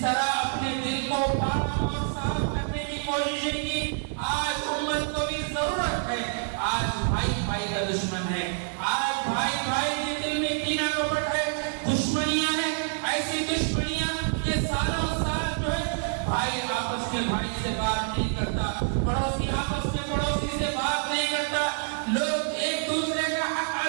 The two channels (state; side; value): silent; left; 57 dB below the other